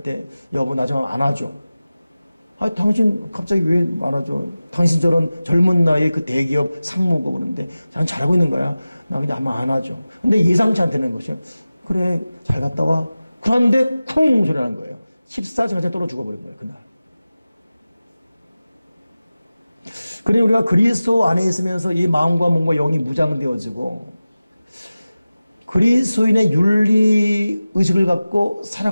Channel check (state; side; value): inverted; both; correlation -0.96